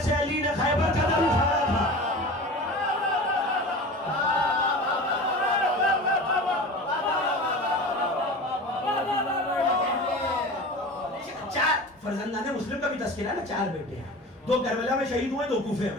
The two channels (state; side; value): normal; both; correlation 0.34